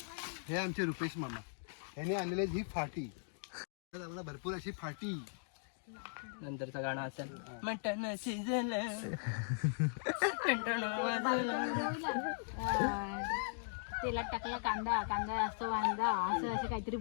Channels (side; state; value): right; silent; digital silence